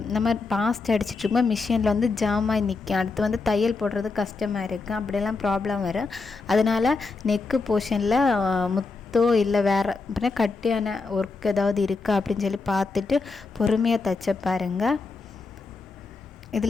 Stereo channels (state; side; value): quieter; right; 4.1 dB